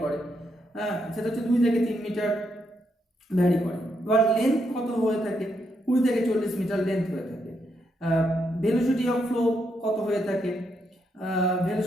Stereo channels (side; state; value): both; normal; correlation 0.79